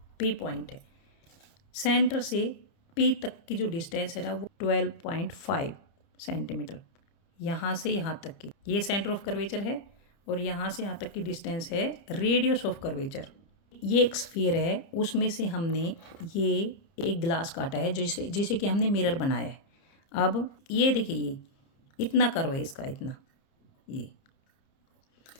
पी पॉइंट है। सेंटर से पी तक की जो डिस्टेंस है ना, वो 12.5 सेंटीमीटर, यहाँ से यहाँ तक की, ये सेंटर ऑफ कर्वेचर है, और यहाँ से यहाँ तक की डिस्टेंस है रेडियस ऑफ कर्वेचर। ये एक स्फीयर है, उसमें से हमने ये एक ग्लास काटा है जिसे कि हमने मिरर बनाया है। अब ये देखिए, ये इतना कर्व है इसका, इतना, ये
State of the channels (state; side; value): late; right; 30 ms